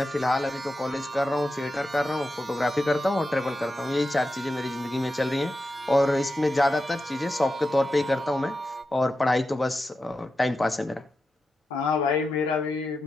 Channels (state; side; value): normal; both; correlation 0.90